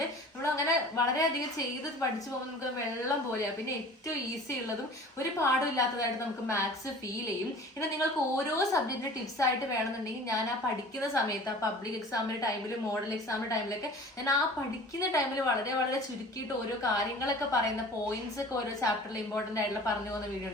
നമ്മൾ അങ്ങനെ വളരെയധികം ചെയ്ത് പഠിച്ചു പോകുമ്പോൾ നമുക്ക് വെള്ളം പോലെയാണ്. പിന്നെ ഏറ്റവും ഈസി ഉള്ളതും ഒരു പാടും ഇല്ലാത്തതായിട്ട് നമുക്ക് മാത്സ് ഫീൽ ചെയ്യും. പിന്നെ നിങ്ങൾക്ക് ഓരോ സബ്ജക്റ്റിന്റെ ടിപ്സ് ആയിട്ട് വേണമെന്നുണ്ടെങ്കിൽ ഞാൻ ആ പഠിക്കുന്ന സമയത്ത്, ആ പബ്ലിക് എക്സാമിന്റെ ടൈമിൽ, മോഡൽ എക്സാമിന്റെ ടൈമിലൊക്കെ ഞാൻ ആ പഠിക്കുന്ന ടൈമിൽ വളരെ വളരെ ചുരുക്കിയിട്ട് ഓരോ കാര്യങ്ങളൊക്കെ പറയുന്ന പോയിന്റ്സ് ഒക്കെ ഓരോ ചാപ്റ്ററിൽ ഇമ്പോർട്ടന്റ് ആയിട്ടുള്ള പറഞ്ഞു പോകുന്ന വീഡിയോ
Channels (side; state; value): both; normal; correlation 0.43